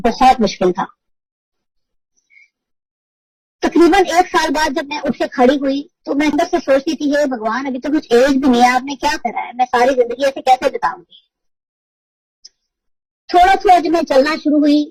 मुश्किल था। तकरीबन एक साल बाद जब मैं उठ के खड़ी हुई तो मैं अंदर से सोचती थी हे भगवान अभी तो कुछ एज भी नहीं है, आपने क्या करा है, मैं सारी जिंदगी ऐसे कैसे बिताऊंगी। थोड़ा जब मैं चलना शुरू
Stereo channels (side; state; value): both; identical; correlation 1.00